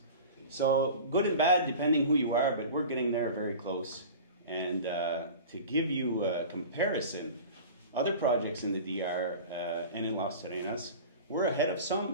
So good and bad, depending who you are, but we're getting there very close. And to give you a comparison, other projects in the DR and in Las Terrenas, we're ahead of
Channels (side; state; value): both; inverted; correlation -0.36